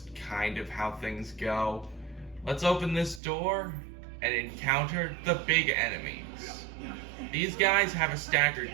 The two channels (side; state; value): left; drops out; at 3.2 s